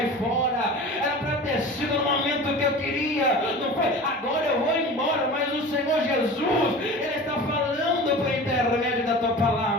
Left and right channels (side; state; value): both; normal; correlation 0.36